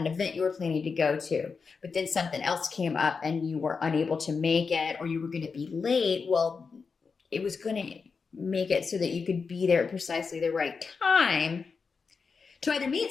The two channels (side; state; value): right; quieter; 5.1 dB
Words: an event you were planning to go to, but then something else came up and you were unable to make it, or you were going to be late. Well, it was going to make it so that you could be there at precisely the right time to either meet